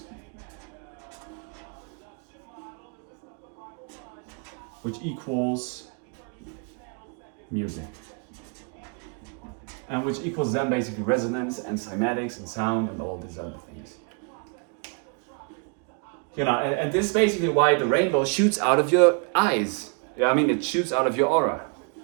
which equals music, and which equals then basically resonance and cymatics and sound and all these other things. And this is basically why the rainbow shoots out of your eyes. I mean, it shoots out of your aura.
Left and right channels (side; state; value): left; quieter; 37.0 dB